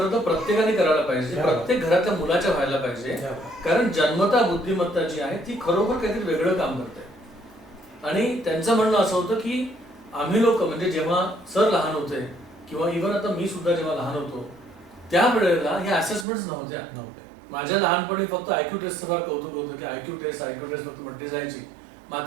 तर प्रत्येकाने करायला पाहिजे, प्रत्येक घरातल्या मुलाच्या व्हायला पाहिजे, कारण जन्मता बुद्धिमत्ता जी आहे ती खरोखर काहीतरी वेगळं काम करते. आणि त्यांचं म्हणणं असं होतं की आम्ही लोक म्हणजे जेव्हा सर लहान होते किंवा इव्हन आता मी सुद्धा जेव्हा लहान होतो त्यावेळेला ह्या असेसमेंट्स नव्हत्या. माझ्या लहानपणी फक्त आयक्यू टेस्टचं फार कौतुक होतं की आयक्यू टेस्ट फक्त म्हटली जायची.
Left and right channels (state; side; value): drops out; left; at 16.2 s